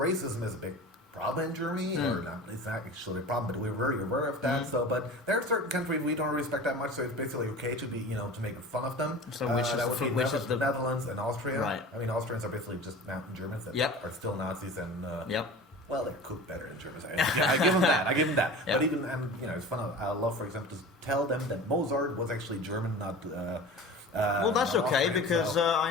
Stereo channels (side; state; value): both; normal; correlation 0.36